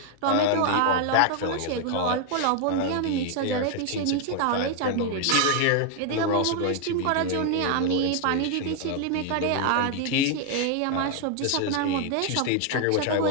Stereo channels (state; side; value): different; both; correlation 0.00